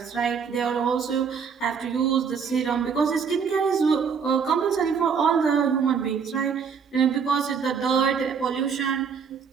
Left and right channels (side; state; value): left; quieter; 6.4 dB